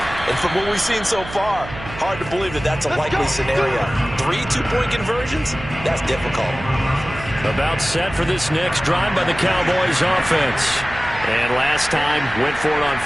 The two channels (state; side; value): noise; right; hum, 13 dB below the sound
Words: And from what we've seen so far, hard to believe that that's a likely scenario. 3 two-point conversions? That's difficult. About set for this next drive by the Cowboys offense. And last time, went for it on